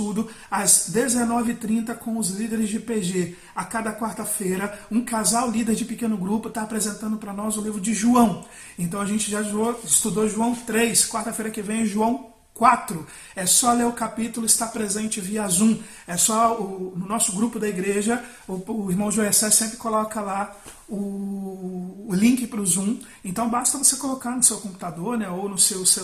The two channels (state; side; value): identical; both; correlation 1.00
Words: às 19h30 com os líderes de PG. A cada quarta-feira, um casal líder de pequeno grupo está apresentando para nós o livro de João. Então a gente já estudou João 3, quarta-feira que vem é João 4. É só ler o capítulo, está presente via Zoom. É só no nosso grupo da igreja, o irmão Joessé sempre coloca lá o link para o Zoom. Então basta você colocar no seu computador, né, ou no seu